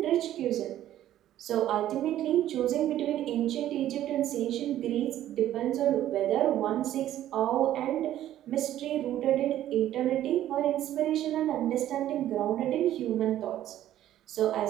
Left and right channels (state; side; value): quieter; left; 12.6 dB